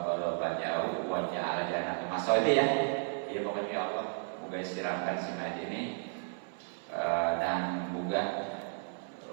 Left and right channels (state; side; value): silent; left; 55 dB below the other